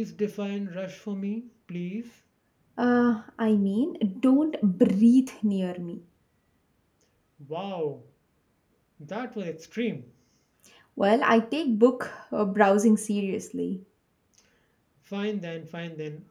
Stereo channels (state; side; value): identical; both; correlation 1.00